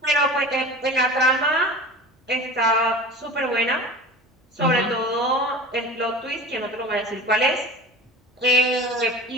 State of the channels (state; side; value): normal; both; correlation 0.36